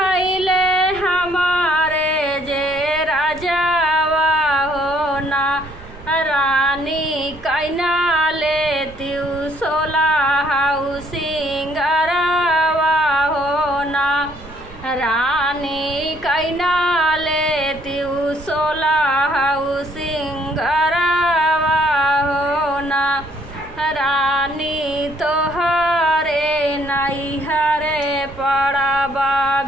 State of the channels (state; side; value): noise; right; rumble, 19 dB below the sound